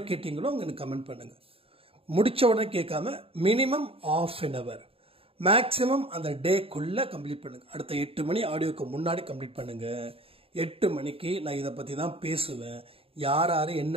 கேட்டீங்களோ அவங்க எனக்கு கமெண்ட் பண்ணுங்கள். முடித்த உடனே கேட்காம மினிமம் ½ அன் ஹவர் மேக்ஸிமம் அந்த டேக்குள்ளே கம்ப்ளீட் பண்ணுங்கள். அடுத்த 8 மணி ஆடியோக்கு முன்னாடி கம்ப்ளீட் பண்ணுங்கள். 8 மணிக்கு நான் இதை பற்றி தான் பேசுவேன். யார் யார்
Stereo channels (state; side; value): late; left; 0.27 ms